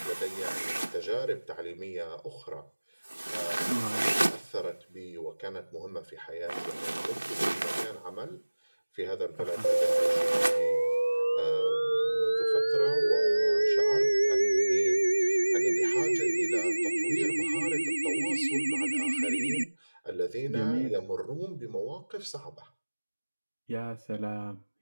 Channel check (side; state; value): both; inverted; correlation -1.00